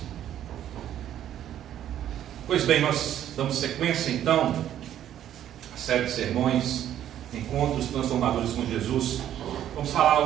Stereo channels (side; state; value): left; quieter; 11.1 dB